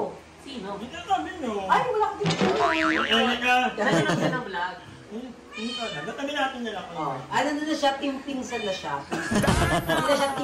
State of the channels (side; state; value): both; identical; correlation 1.00